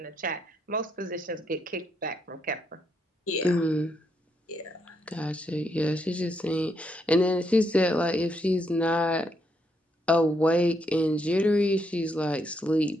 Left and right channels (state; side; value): normal; both; correlation 0.77